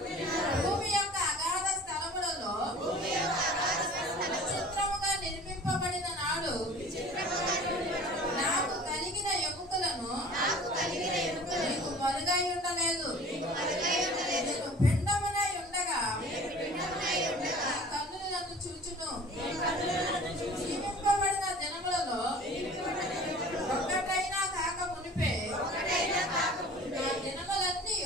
భూమి యొక్క అగాధ స్థలములలో విచిత్రముగా నిర్మింపబడిన నాడు నాకు కలిగిన ఎముకలను నీకు మరుగై ఉండలేదు. నేను పిండమునై ఉండగా నీ కన్నులు నన్ను చూచును. జీవింపబడిన దినములలో ఒక్కటైనా కాక మునిపే నా దినములన్నీ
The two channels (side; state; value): both; normal; correlation 0.44